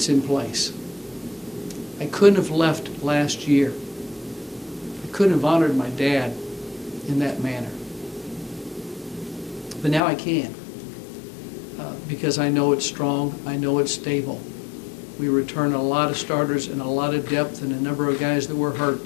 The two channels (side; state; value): right; drops out; at 10.0 s